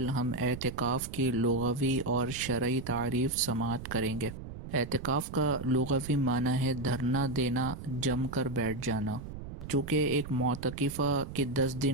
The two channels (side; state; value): right; noise; rumble, 11 dB below the sound